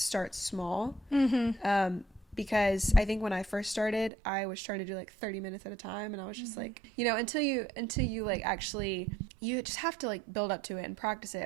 small, because I think when I first started, I was trying to do like 30 minutes at a time, and I was just like, you know, until you like actually, you just have to like build up to it and practice it.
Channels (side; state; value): left; drops out; at 4.1 s